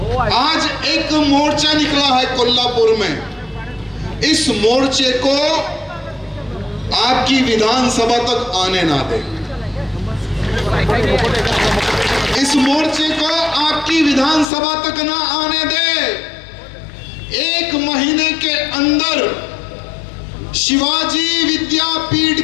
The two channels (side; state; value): right; drops out; at 14.5 s